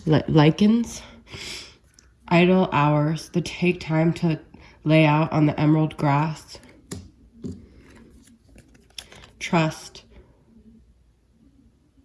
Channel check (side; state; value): both; identical; correlation 1.00